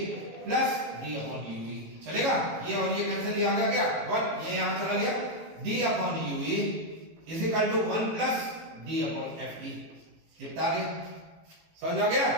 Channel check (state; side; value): late; left; 18 ms